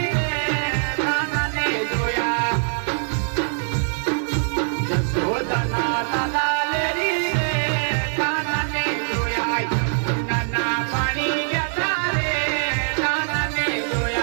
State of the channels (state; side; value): silent; left; 64 dB below the other